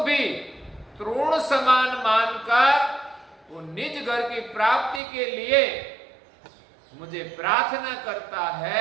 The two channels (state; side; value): drops out; left; at 5.0 s